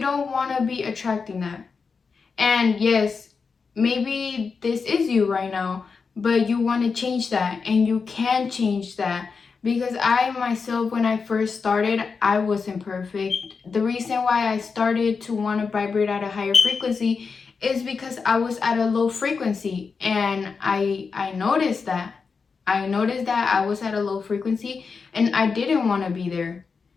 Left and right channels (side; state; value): right; quieter; 5.1 dB